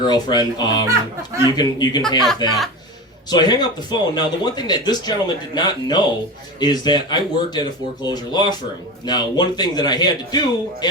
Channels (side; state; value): both; normal; correlation 0.26